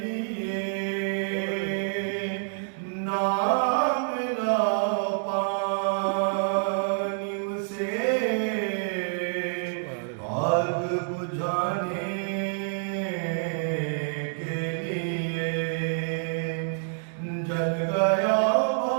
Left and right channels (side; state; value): left; silent; digital silence